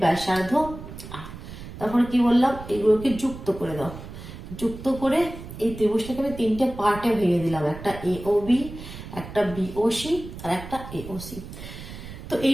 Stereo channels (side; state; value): right; noise; rumble, 12 dB below the sound